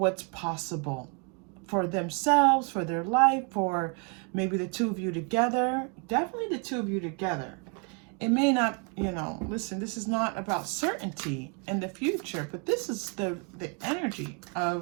possible for themselves, for their life, for maybe the two of you together. Definitely the two of you together. It may not, listen, this is not about certainty in the future, but this is the energy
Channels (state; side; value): quieter; left; 34.2 dB